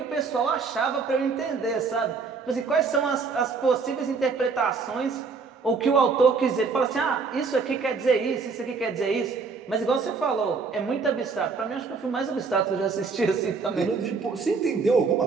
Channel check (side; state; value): left; quieter; 4.8 dB